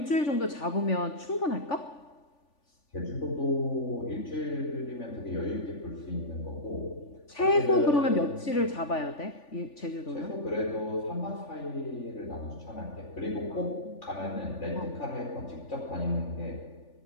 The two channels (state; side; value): late; right; 3.5 ms